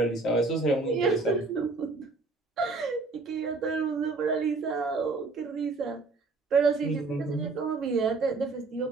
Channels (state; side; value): quieter; left; 3.8 dB